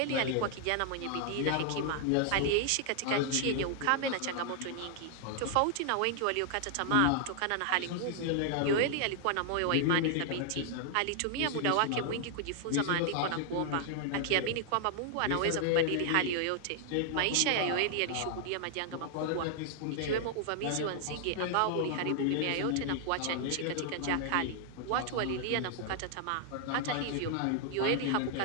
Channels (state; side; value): different; both; correlation 0.00